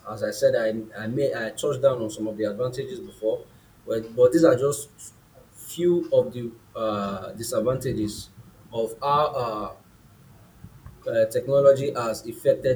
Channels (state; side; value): identical; both; correlation 1.00